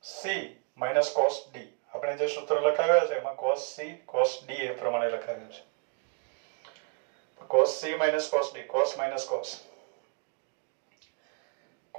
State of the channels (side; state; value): left; quieter; 38.5 dB